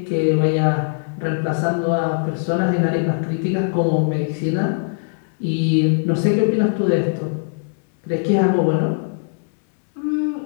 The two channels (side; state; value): right; silent; digital silence